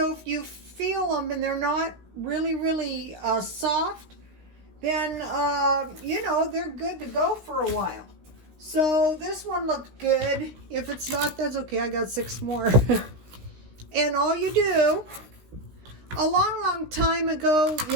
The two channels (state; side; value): late; left; 16 ms